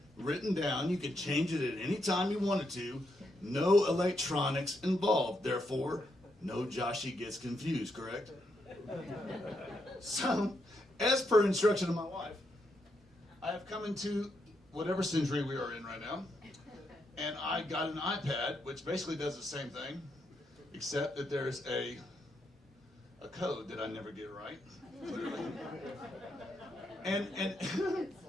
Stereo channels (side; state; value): both; normal; correlation 0.80